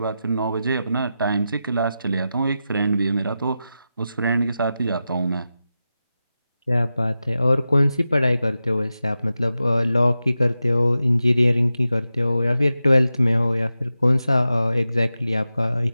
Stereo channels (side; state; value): both; inverted; correlation -0.91